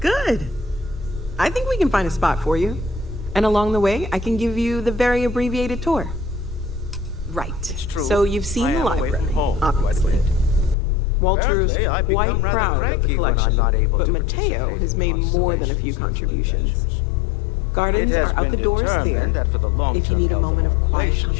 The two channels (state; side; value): drops out; right; at 10.8 s